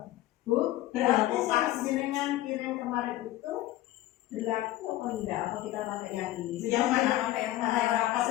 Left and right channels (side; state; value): right; quieter; 15.6 dB